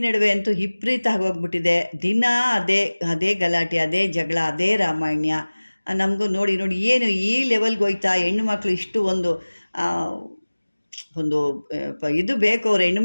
ನಡುವೆ ಅಂತೂ ವಿಪರೀತ ಆಗೋಗ್ಬಿಟ್ಟಿದೆ. ದಿನ ಅದೇ ಗಲಾಟೆ, ಅದೇ ಜಗಳ, ಅದೇ ರಾಮಾಯಣ. ನಮಗೂ ನೋಡಿ ಏನು ಈ ಲೆವೆಲ್ಗೆ ಹೋಯ್ತಾ ಹೆಣ್ಣುಮಕ್ಳು ಇಷ್ಟು ಒಂದು ಇದು ಬೇಕು, ಅವ್ರು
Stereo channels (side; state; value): both; inverted; correlation -1.00